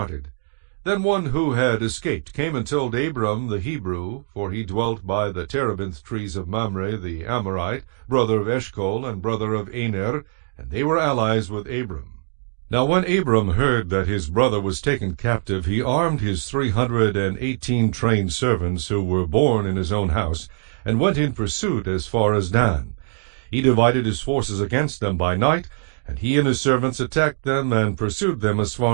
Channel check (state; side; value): silent; left; digital silence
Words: Then one who had escaped came and told Abram the Hebrew, for he dwelt by the terebinth trees of Mamre the Amorite, brother of Eshcol, and brother of Aner, and they were allies with Abram. Now when Abram heard that his brother was taken captive, he armed his 318 trained servants who were born in his own house, and went in pursuit as far as Dan. He divided his forces against them by night, and he and his servants attacked them and pursued them as